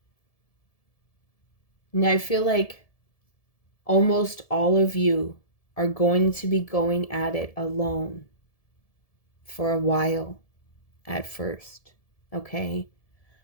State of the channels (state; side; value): late; right; 1.7 ms